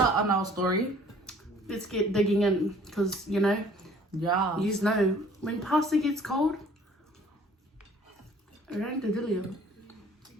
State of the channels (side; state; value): both; normal; correlation 0.54